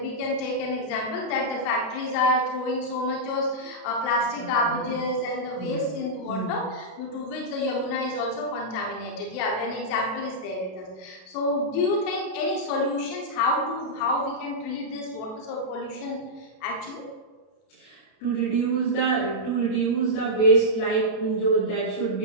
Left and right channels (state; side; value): late; right; 32 ms